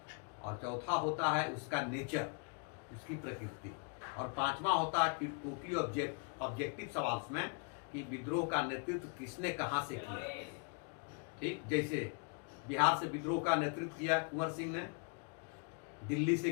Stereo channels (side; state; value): right; quieter; 38.7 dB